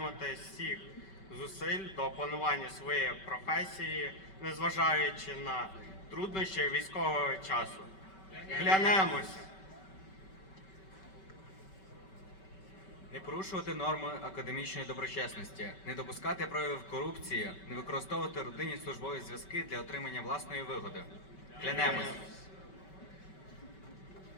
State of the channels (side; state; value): right; late; 5.2 ms